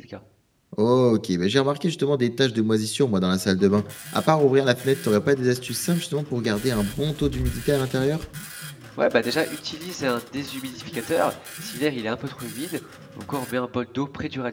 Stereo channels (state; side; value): identical; both; correlation 1.00